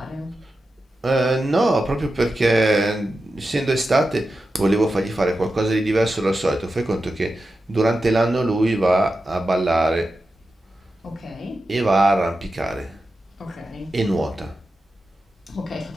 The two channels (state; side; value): normal; both; correlation 0.91